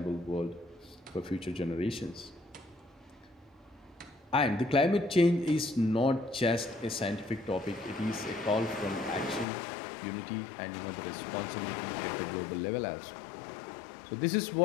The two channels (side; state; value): right; drops out; at 9.5 s